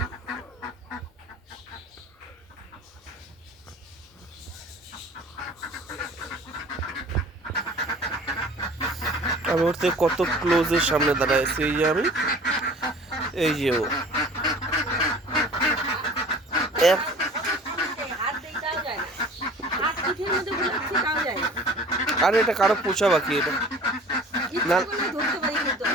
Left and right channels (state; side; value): normal; both; correlation 0.46